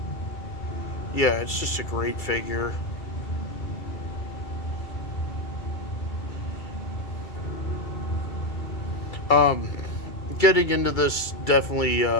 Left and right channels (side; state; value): right; late; 2.3 ms